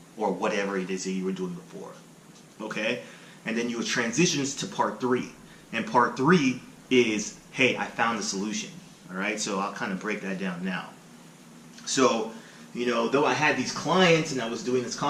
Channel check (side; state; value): both; identical; correlation 1.00